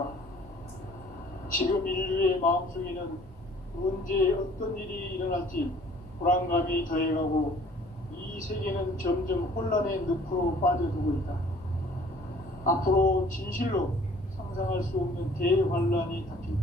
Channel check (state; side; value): normal; both; correlation 0.54